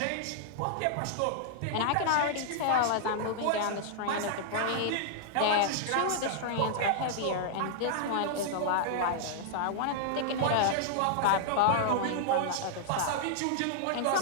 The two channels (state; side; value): different; both; correlation -0.01